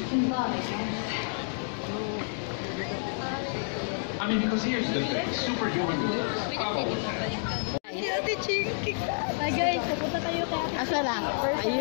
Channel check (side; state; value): right; silent; digital silence